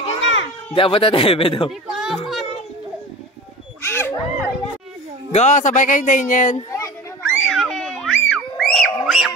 na. Hindi abot na tebe daw. Go, sabay kayo, Daniel.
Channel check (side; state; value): both; normal; correlation 0.35